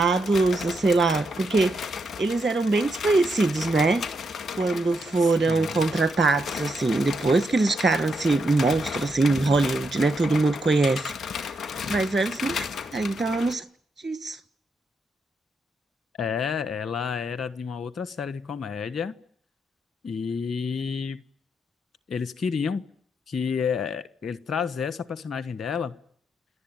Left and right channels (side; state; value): both; normal; correlation 0.80